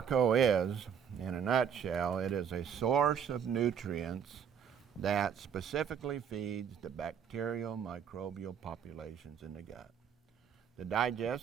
is, in a nutshell, it is a source of nutrients that specifically feeds the bacterial microbial populations in the gut. The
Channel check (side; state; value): left; quieter; 7.8 dB